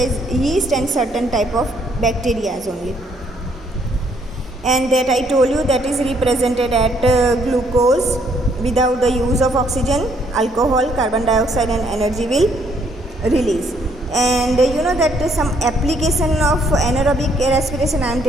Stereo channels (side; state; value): both; normal; correlation 0.68